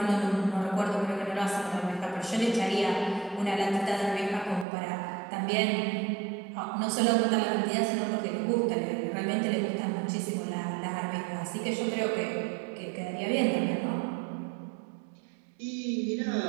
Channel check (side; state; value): left; drops out; at 4.7 s